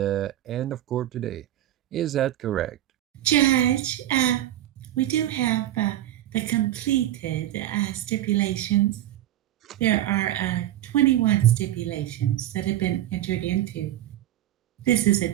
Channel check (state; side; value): quieter; left; 13.1 dB